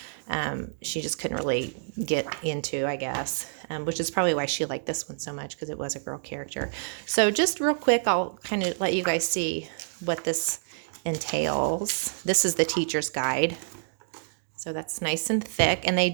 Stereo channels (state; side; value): silent; left; digital silence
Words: she just couldn't really get into, I guess, which is probably why she liked this one so much, because it was a girl character. So just real quick, I'll kind of let you guys see what this entails. This is the teacher's guide. So that's nice and thick. And they